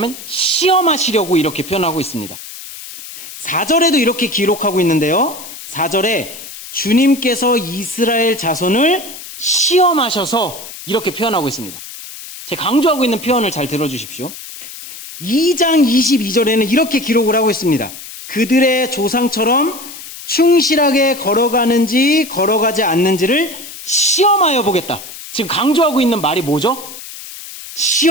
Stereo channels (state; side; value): noise; left; hiss, 13 dB below the sound